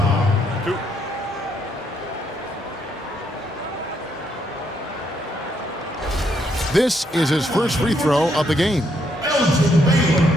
2. This is his first free throw of the game. Elgin Baylor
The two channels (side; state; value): both; normal; correlation 0.74